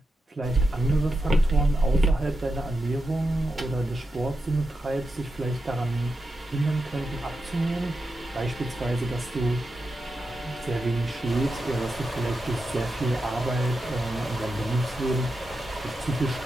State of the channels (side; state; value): both; normal; correlation 0.88